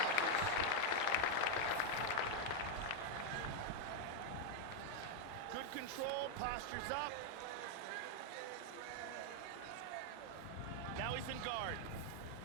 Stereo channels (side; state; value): both; different; correlation 0.01